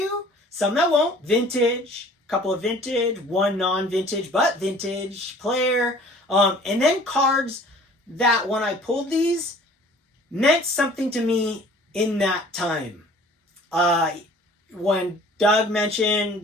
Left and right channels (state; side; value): normal; both; correlation 0.50